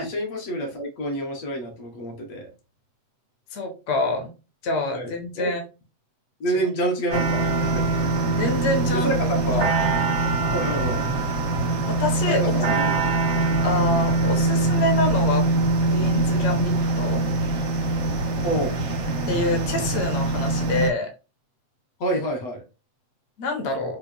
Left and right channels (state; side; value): late; right; 7.7 ms